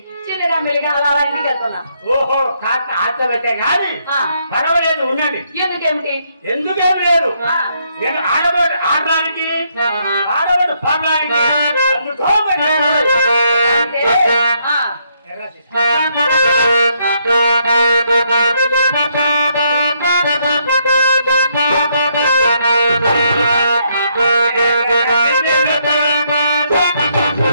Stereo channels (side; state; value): both; inverted; correlation -0.74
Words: చిన్నగా మెల్లిగా అలా ఇంటికి వెళ్తున్నా. ఓహో కాక ఆశ పెట్టే గాని పర్వాలేదు ఉండండి. ఎందుకేమిటి? ఎందుకేమి లేదు. నేను ఆడబడి ఆడడానికి ఆడబడి పాడడానికి